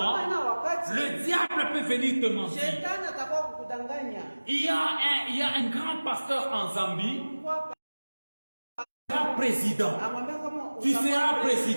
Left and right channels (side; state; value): both; inverted; correlation -1.00